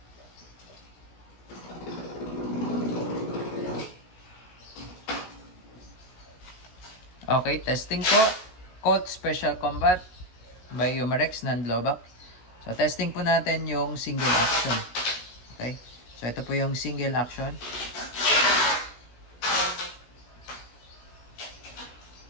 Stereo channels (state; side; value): late; right; 16 ms